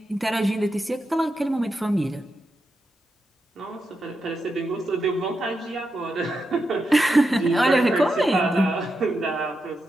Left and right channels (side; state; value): both; normal; correlation 0.87